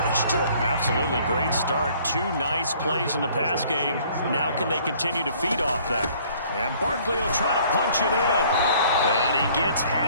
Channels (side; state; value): both; inverted; correlation -0.57